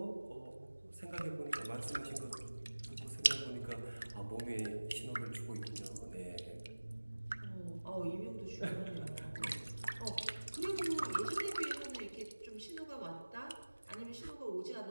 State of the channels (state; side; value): inverted; both; correlation -1.00